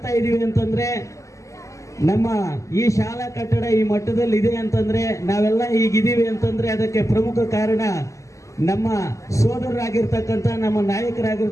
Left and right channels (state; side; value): late; right; 0.15 ms